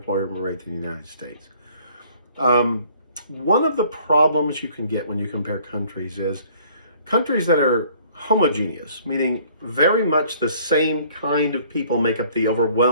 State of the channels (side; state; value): both; inverted; correlation -0.58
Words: rate than the United States. One of the problems you can get when you compare countries is countries that are homogeneous, meaning very much the same kind of people make up the